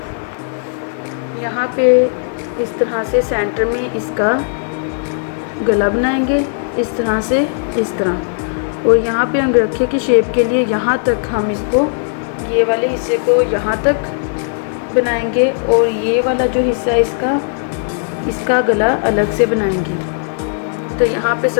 यहाँ पे इस तरह से सेंटर में इसका गला बनाएंगे इस तरह से, इस तरह। और यहाँ पे अंगरखे की शेप के लिए यहाँ तक हम इसको, ये वाले हिस्से को यहाँ तक बनाएंगे और ये वाला जो हिस्सा है इसका गला अलग से बनाएंगे। तो यहाँ पे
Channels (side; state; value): right; silent; 67 dB below the other